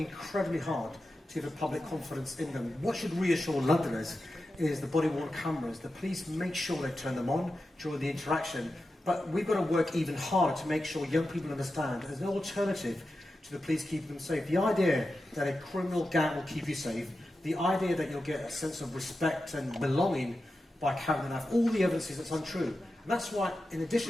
hard to give the public confidence in them. What should reassure Londoners is the body-worn cameras. The police make sure they turn them on during the interaction, but we've got to work even harder to make sure young people understand there's no alternative to the police keeping them safe. The idea that a criminal gang will keep you safe, the idea that you'll get a sense of respect and belonging by carrying the knife, all the evidence is that's untrue. And that's why, in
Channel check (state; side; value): normal; both; correlation 0.91